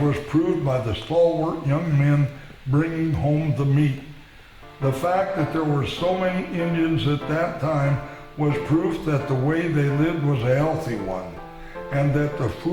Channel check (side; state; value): both; identical; correlation 1.00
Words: was proved by the stalwart young men bringing home the meat. The fact that there were so many Indians at that time was proof that the way they lived was a healthy one, and that the